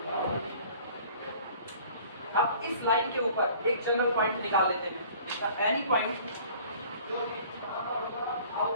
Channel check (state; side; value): inverted; both; correlation -0.51